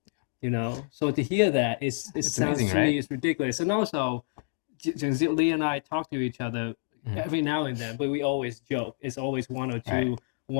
So to hear that, it sounds amazing, to right? me it's ridiculous. And also, Lee and I talk to each other every now and then, but we always joke. It's always one or two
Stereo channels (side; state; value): right; silent; digital silence